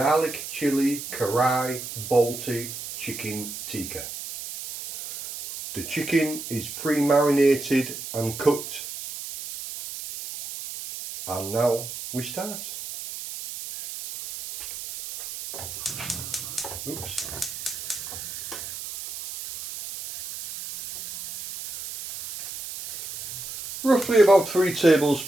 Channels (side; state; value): right; noise; hiss, 9 dB below the sound